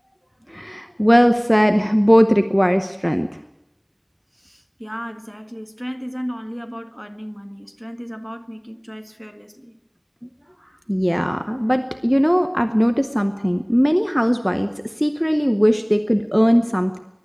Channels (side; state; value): both; identical; correlation 1.00